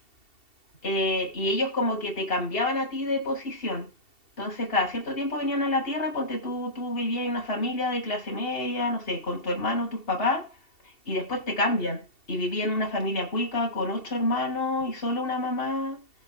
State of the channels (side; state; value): right; late; 2.7 ms